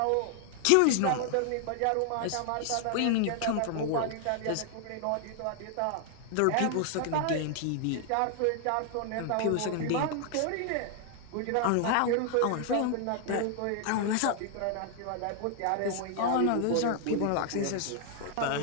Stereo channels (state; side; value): different; both; correlation 0.00